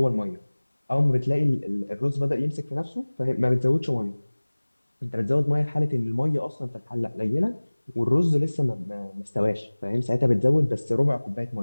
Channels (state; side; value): inverted; both; correlation -1.00